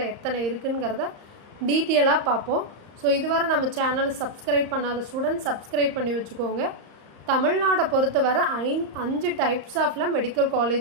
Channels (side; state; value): left; late; 35 ms